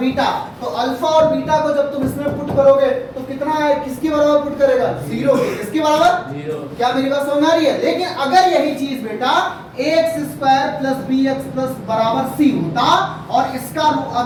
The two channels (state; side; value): identical; both; correlation 1.00